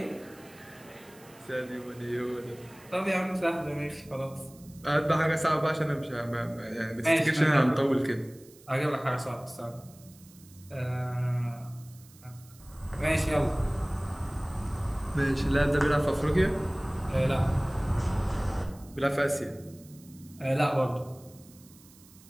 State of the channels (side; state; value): right; noise; hiss, 24 dB below the sound